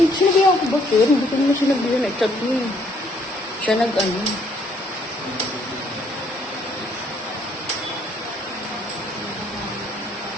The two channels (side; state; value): both; normal; correlation 0.66